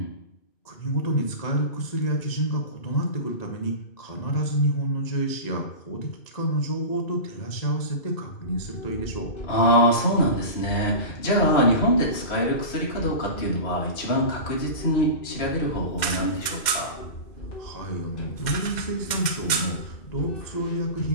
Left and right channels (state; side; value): late; right; 2.1 ms